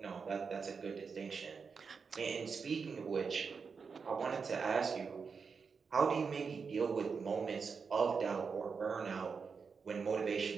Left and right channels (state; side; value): quieter; left; 5.5 dB